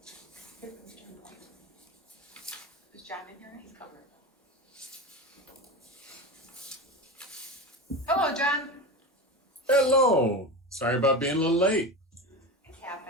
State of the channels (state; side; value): normal; both; correlation 0.24